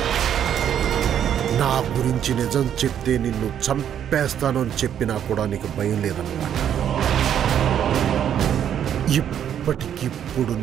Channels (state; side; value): quieter; left; 9.5 dB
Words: నా గురించి నిజం చెప్తే నిన్ను చంపేస్తాను అని చెప్పినా కూడా నీకు భయం లేదన్నమాట. ఇప్పటికిప్పుడు